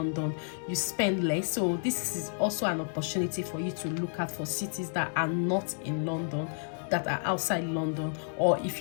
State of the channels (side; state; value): right; silent; digital silence